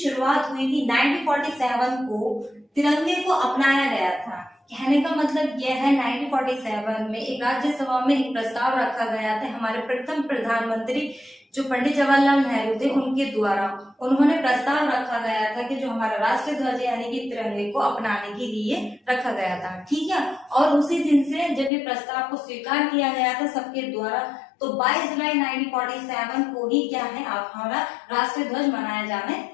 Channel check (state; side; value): drops out; right; at 21.7 s